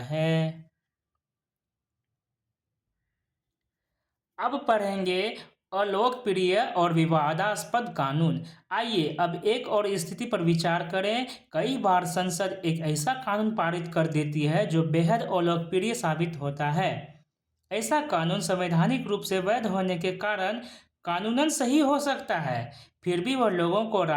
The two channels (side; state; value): both; identical; correlation 1.00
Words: है। अब पढ़ेंगे अलोकप्रिय और विवादास्पद कानून। आइए अब एक और स्थिति पर विचार करें। कई बार संसद एक ऐसा कानून पारित कर देती है जो बेहद अलोकप्रिय साबित होता है। ऐसा कानून संवैधानिक रूप से वैध होने के कारण कानूनन सही हो सकता है, फिर भी वह लोगों को